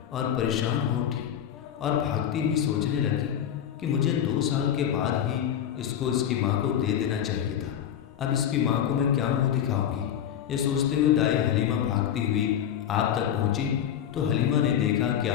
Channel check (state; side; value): quieter; right; 9.8 dB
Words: اور پریشان ہو اٹھی اور بھاگتی ہوئی سوچنے لگی کہ مجھے 2 سال کے بعد ہی اس کو اس کی ماں کو دے دینا چاہیے تھا، اب اس کی ماں کو میں کیا منہ دکھاؤں گی۔ یہ سوچتے ہوئے دائی حلیمہ بھاگتی ہوئی آپ تک پہنچی تو حلیمہ نے دیکھا کہ